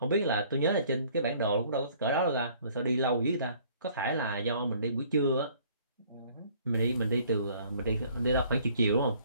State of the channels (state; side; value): inverted; both; correlation -0.58